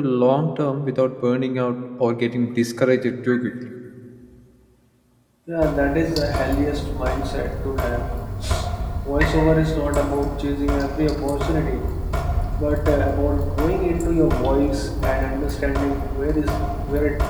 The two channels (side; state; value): both; identical; correlation 1.00